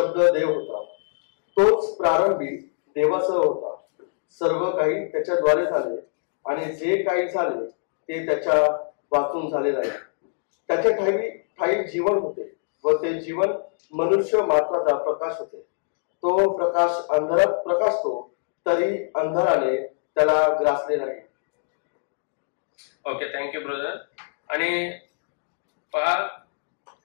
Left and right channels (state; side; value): silent; right; digital silence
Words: देव होता. तोच प्रारंभी देवासह होता. सर्व काही त्याच्याद्वारे झाले आणि जे काही झाले ते त्याच्या वाचून झाले नाही. त्याच्या ठाई जीवन होते व ते जीवन मनुष्य मात्राचा प्रकाश होते. तो प्रकाश अंधारात प्रकाशतो तरी अंधाराने त्याला ग्रासले नाही. Okay, thank you brother. आणि पहा,